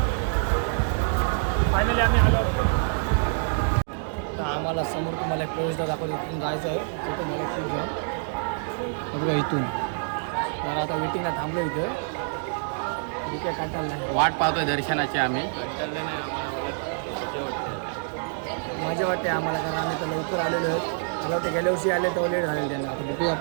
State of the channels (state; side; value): silent; left; digital silence